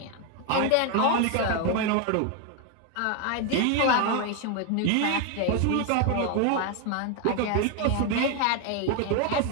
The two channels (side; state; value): both; different; correlation 0.01